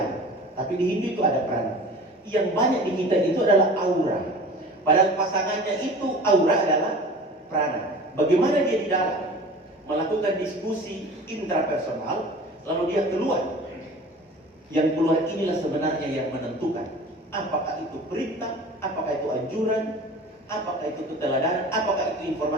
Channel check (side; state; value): both; normal; correlation 0.40